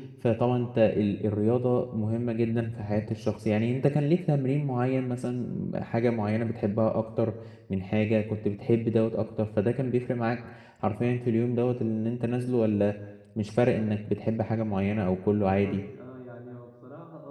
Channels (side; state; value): both; identical; correlation 1.00